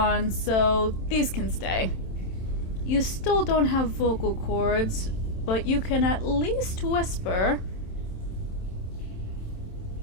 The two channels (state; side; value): late; right; 27 ms